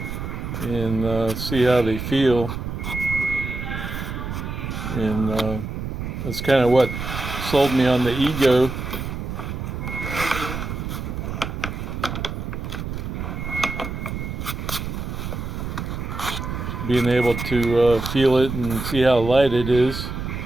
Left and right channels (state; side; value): noise; right; rumble, 5 dB below the sound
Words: and see how they feel. And that's kind of what sold me on the Ego. Being able to feel it and see how light it is.